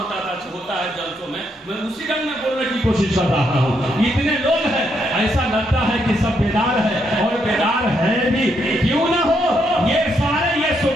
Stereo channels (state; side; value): normal; both; correlation 0.77